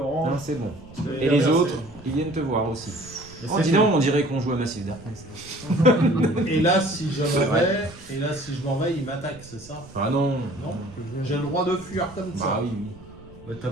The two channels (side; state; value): right; noise; rumble, 21 dB below the sound